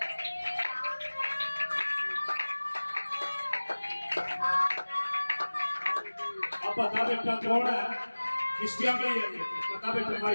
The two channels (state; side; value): inverted; both; correlation -1.00